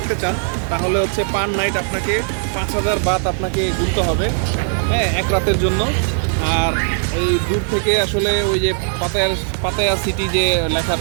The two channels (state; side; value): silent; left; digital silence